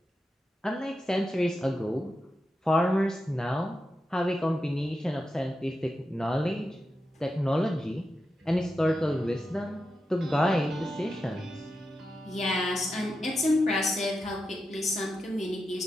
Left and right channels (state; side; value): normal; both; correlation 0.89